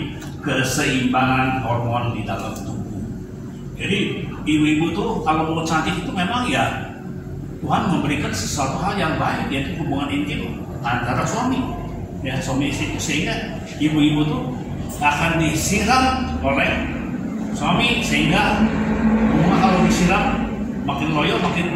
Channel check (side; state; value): both; identical; correlation 1.00